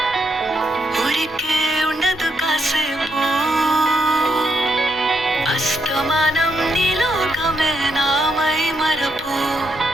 ఊరికే ఉండదు కాసేపు అస్తమానం నీలోకమే నామై మరపు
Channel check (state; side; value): normal; both; correlation 0.78